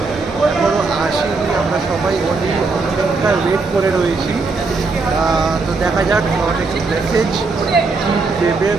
এখনও আসেনি, আমরা সবাই অনেক অপেক্ষায় ওয়েট করে রয়েছি। তো দেখা যাক অনেক মেসেজ দেবে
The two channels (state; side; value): quieter; left; 4.0 dB